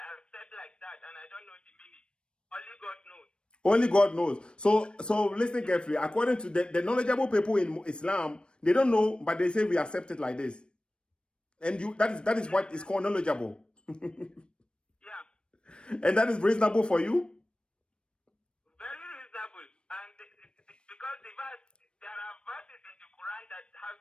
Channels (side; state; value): right; late; 0.055 ms